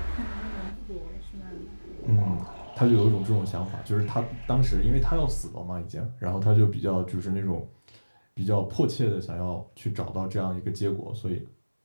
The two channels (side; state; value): both; inverted; correlation -1.00